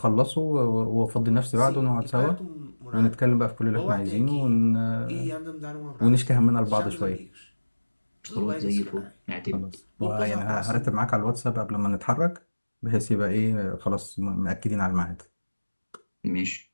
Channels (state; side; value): inverted; both; correlation -1.00